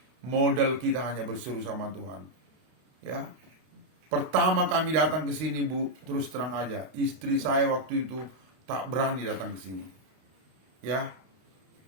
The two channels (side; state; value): left; late; 32 ms